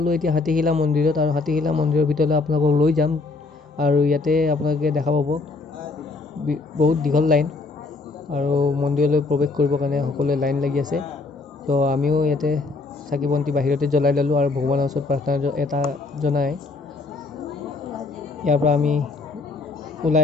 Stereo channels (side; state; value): right; quieter; 3.7 dB